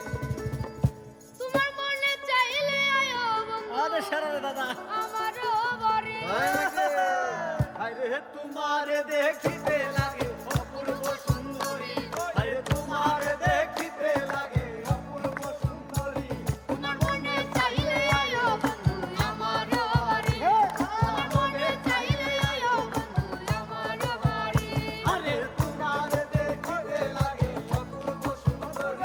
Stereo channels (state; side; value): identical; both; correlation 1.00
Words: তোমার মনে চাইলে আয়ো বন্ধু আরে সারা দাদা আমারও বাড়ি। হায়রে তোমারে দেখিতে লাগে অপূর্ব সুন্দরী। হায়রে তোমারে দেখিতে লাগে অপূর্ব সুন্দরী। তোমার মনে চাইলে আয়ো বন্ধু আমারও বাড়ি। তোমার মনে চাইলে আয়ো বন্ধু আমারও বাড়ি। আরে তোমারে দেখিতে লাগে অপূর্ব